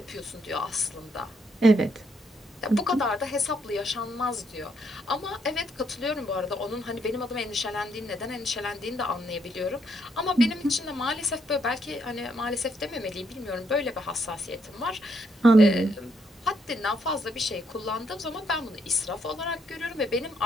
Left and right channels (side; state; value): both; normal; correlation 0.74